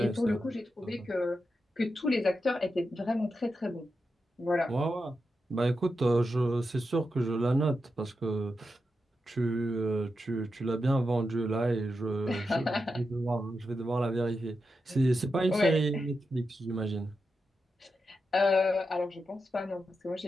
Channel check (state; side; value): normal; both; correlation 0.88